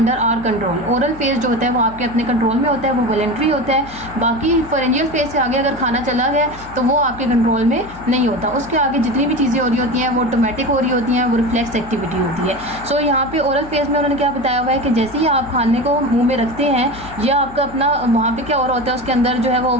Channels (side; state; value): left; noise; hum, 17 dB below the sound